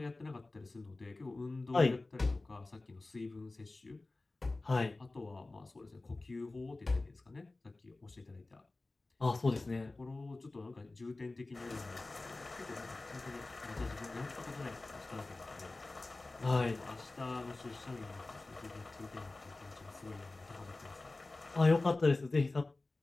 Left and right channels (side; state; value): right; quieter; 3.2 dB